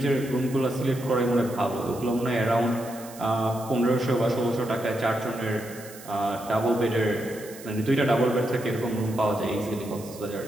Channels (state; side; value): noise; right; hiss, 18 dB below the sound